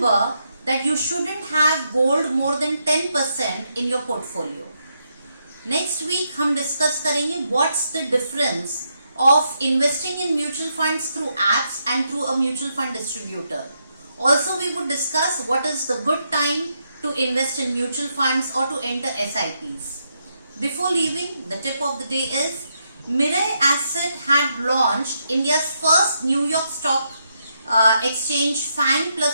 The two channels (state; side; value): inverted; both; correlation -0.80